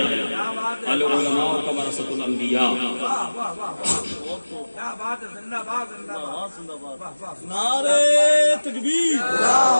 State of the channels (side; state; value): both; inverted; correlation -1.00